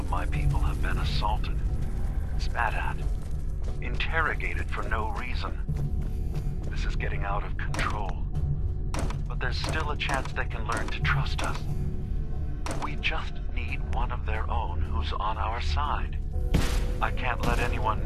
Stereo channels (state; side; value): identical; both; correlation 1.00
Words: my people have been assaulted, spat at, interrogated for no reason. This is getting out of control. But there's still a chance they can learn to trust us. We just need one of their own who's on our side. I can't let